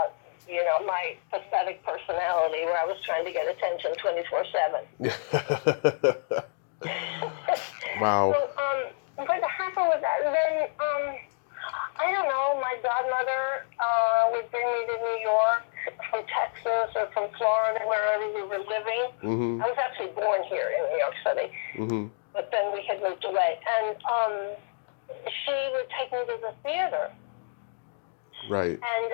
my pathetic personality where I was trying to get attention 24/7. Wow. So, what happened with that? Then, I don't know, my godmother would bring me to New York from Texas or from Florida, wherever we were living. Mm-hmm. I was actually born here in New York City, mm-hmm. but then we had moved away. And she would take me to the theater. Right. And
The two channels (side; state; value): right; silent; digital silence